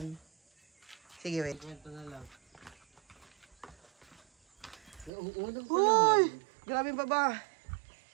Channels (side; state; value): left; drops out; at 5.1 s